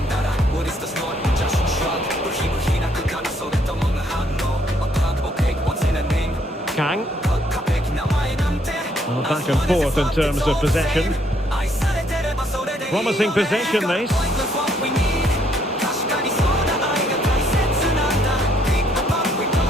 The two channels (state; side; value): normal; both; correlation 0.69